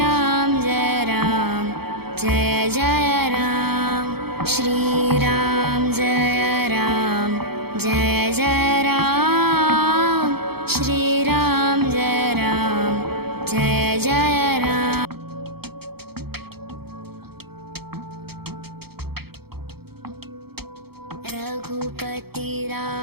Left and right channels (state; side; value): late; left; 0.96 ms